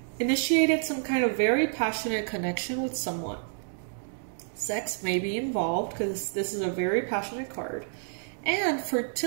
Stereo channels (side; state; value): left; silent; digital silence